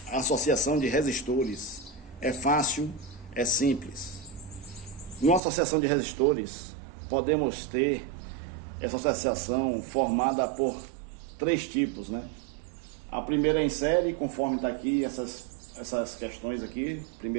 a associação de resistores. É fácil, é simples. Numa associação de resistores, podemos ter essa associação formada por três tipos, né? A primeira é em série, conforme está aqui essas questões aqui,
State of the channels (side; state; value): left; drops out; at 5.4 s